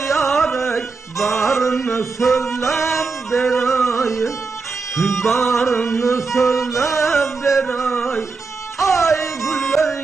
yaray, barını söylep deray, barını söylep deray. Ay güller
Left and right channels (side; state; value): left; quieter; 4.3 dB